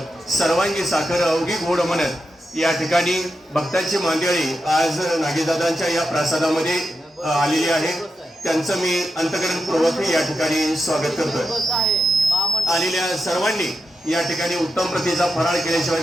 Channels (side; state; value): both; normal; correlation 0.87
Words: सर्वांगी साखर अवघी गोड म्हणत या ठिकाणी भक्तांची मांदियाळी आज नागेशदादांच्या या प्रासादामध्ये आलेली आहे। त्यांचं मी अंतःकरणपूर्वक या ठिकाणी स्वागत करतोय। आलेल्या सर्वांनी या ठिकाणी उत्तम प्रतीचा फराळ